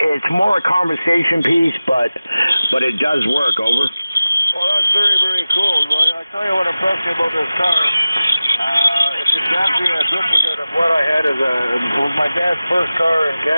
more a conversation piece, but it does work. Over. Well, that's very, very cool. Well, I tell you what impressed me about this car. It's exactly a duplicate of what I had it was my dad's first car in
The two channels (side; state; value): both; inverted; correlation -0.97